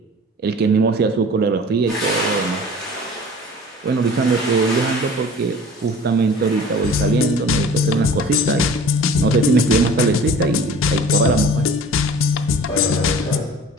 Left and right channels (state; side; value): normal; both; correlation 0.44